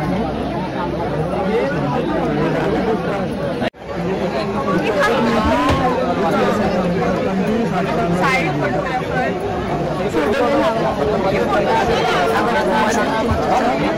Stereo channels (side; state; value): both; identical; correlation 1.00